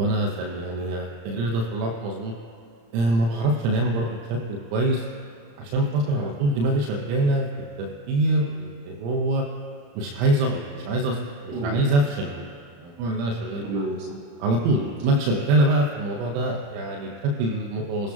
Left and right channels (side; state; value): left; late; 35 ms